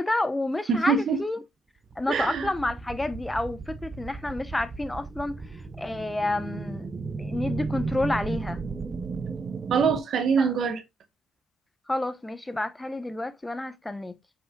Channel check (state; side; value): normal; both; correlation 0.81